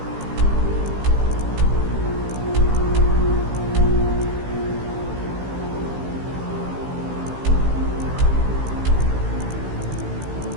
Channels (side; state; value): left; late; 16 ms